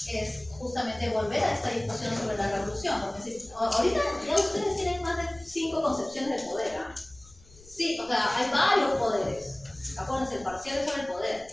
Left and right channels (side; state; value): left; noise; rumble, 23 dB below the sound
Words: es justamente volver a esta discusión sobre la revolución, porque si, ahorita ya ustedes tienen más de 5 concepciones de poder, ¿eh? Sí, o sea, hay varios poderes. Acuérdense, el parcial es sobre el poder,